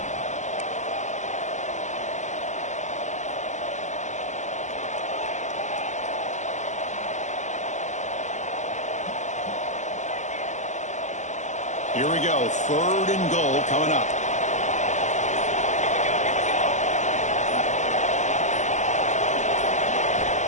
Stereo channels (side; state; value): right; late; 0.34 ms